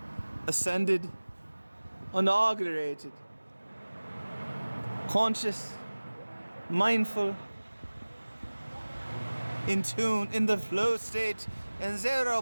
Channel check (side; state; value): both; inverted; correlation -1.00